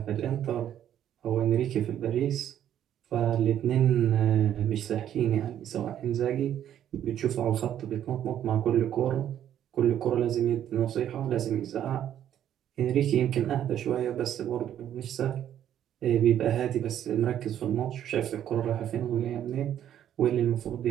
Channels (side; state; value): left; quieter; 10.6 dB